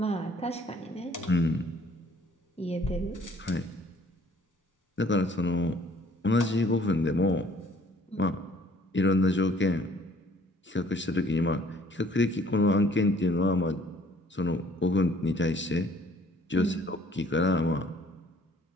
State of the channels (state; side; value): normal; both; correlation 0.58